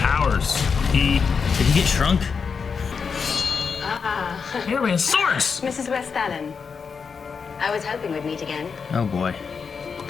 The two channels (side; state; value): right; quieter; 5.7 dB